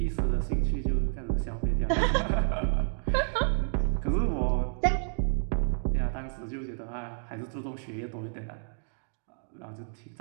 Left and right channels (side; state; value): left; silent; 58 dB below the other